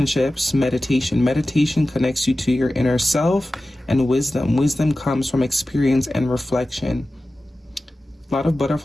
Meditation. Meditation connects you to your inner self. And wisdom. Wisdom comes from experience and reflection. A lot of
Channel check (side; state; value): both; normal; correlation 0.95